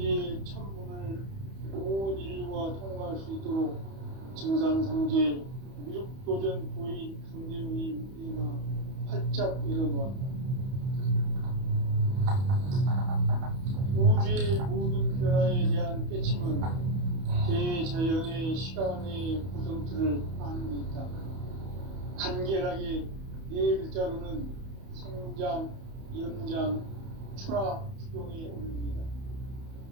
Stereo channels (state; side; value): late; left; 31 ms